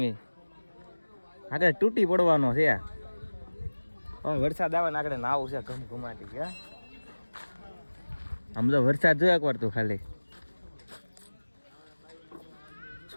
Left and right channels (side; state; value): both; inverted; correlation -1.00